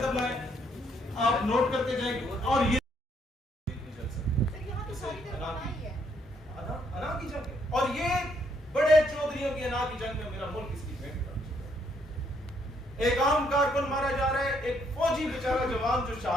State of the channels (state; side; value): normal; both; correlation 0.71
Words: لائیں، آپ نوٹ کرتے جائیں گے۔ اور یہ انا کی جنگ ہے، اور یہ بڑے چودھریوں کی انا کی جنگ میں میرا ملک اس کی بھینٹ کر، ایک عام کارکن مارا جا رہا ہے، ایک فوجی بیچارہ جوان جو